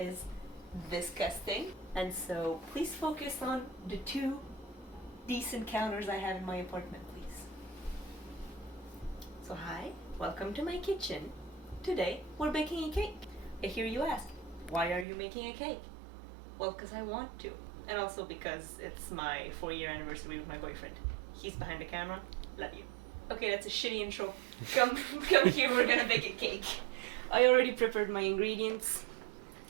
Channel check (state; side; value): drops out; left; at 15.1 s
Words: disgusting. And so please focus on the two decent counters I have in my apartment, please. So hi, welcome to my kitchen. Today we're baking a cake. I hear you ask, why are you making a cake? Well, because I want to. And also because it's my 4-year anniversary with my boyfriend. He's behind the camera. Love you. Okay, that's a shitty intro. Come here, we're gonna bake a cake. I already prepared my ingredients.